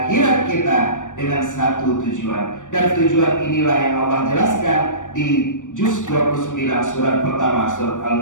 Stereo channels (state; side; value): late; right; 0.87 ms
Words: kita dengan satu tujuan. Dan tujuan inilah yang Allah jelaskan di juz 29 surat pertama surat